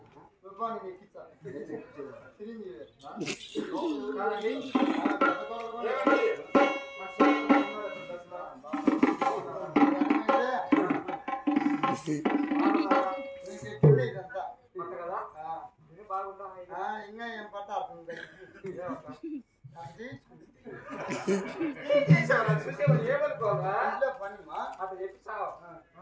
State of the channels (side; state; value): both; identical; correlation 1.00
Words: తుఫాని ఎక్కించా సిరింజి ఇదంతా ఇంకా ఏం పట్ట అవుతుంది పనిమా అట్లా చెప్పిస్తావు.